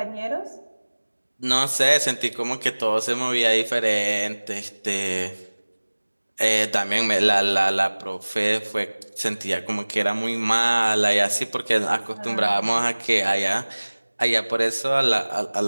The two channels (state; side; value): inverted; both; correlation -1.00